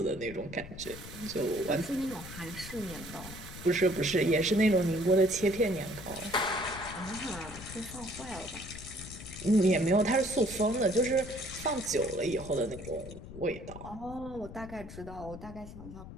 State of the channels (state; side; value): noise; left; rumble, 13 dB below the sound